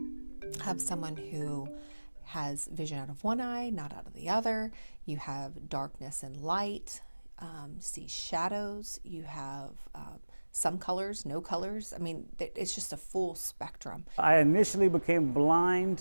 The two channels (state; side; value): inverted; both; correlation -1.00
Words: of someone who has vision out of one eye, not out of the other. You have darkness and light, see shadows. You have some colors, no colors. I mean, it's just a full spectrum. I initially became